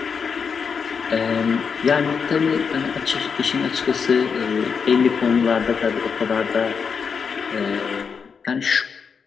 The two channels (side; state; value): right; quieter; 6.0 dB